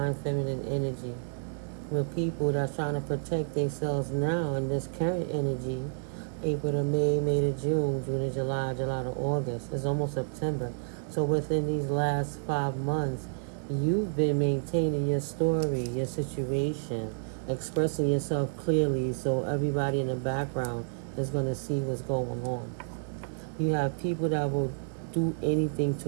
feminine energy, with people that's trying to protect themselves now in this current energy. April to May, May to June, June to July, July to August. It's almost September. So within these last 5 months, you've been maintaining your story, your situation, expressing yourself clearly so everybody in the background is going to see what's going on. You have people that will do anything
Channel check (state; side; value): silent; left; digital silence